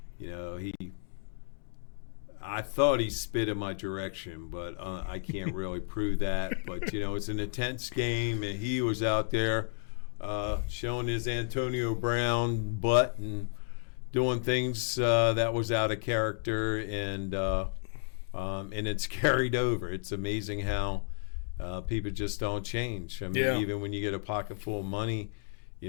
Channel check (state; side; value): silent; right; digital silence